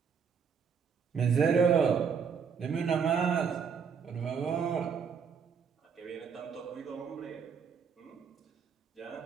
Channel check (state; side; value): quieter; left; 6.5 dB